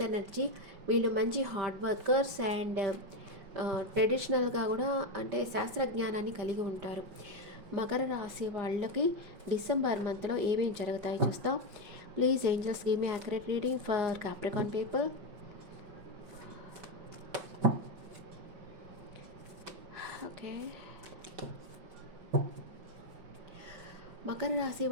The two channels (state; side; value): late; left; 5.4 ms